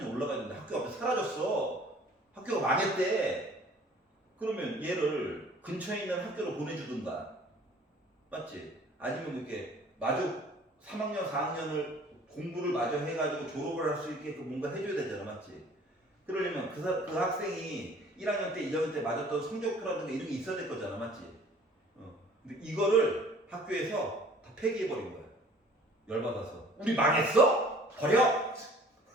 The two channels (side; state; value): both; normal; correlation 0.52